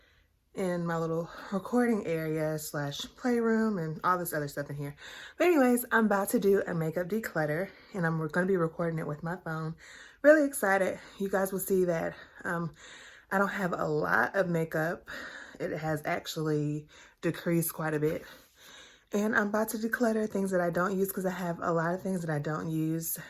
in my little recording area slash playroom and all this other stuff in here. But anyways, I'm about to do a makeup declutter and I'm going to be recording it with my phone. Really excited. You guys will see that I don't have a lot of makeup. It has actually decreased quite a bit. And I'm about to declutter things that I don't use because I have a lot of things that I don't use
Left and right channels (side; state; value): both; identical; correlation 1.00